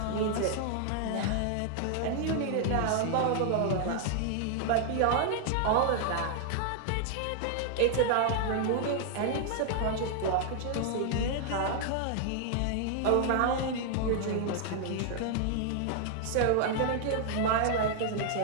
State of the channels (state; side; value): different; both; correlation 0.00